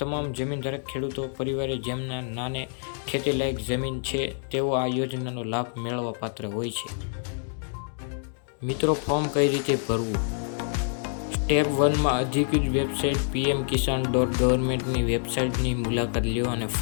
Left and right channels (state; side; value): silent; right; digital silence